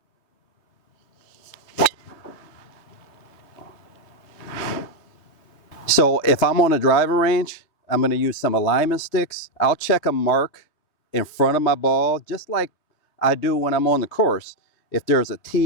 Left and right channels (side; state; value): right; late; 3.3 ms